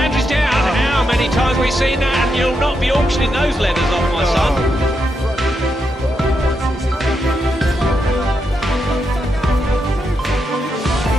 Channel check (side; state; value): both; normal; correlation 0.83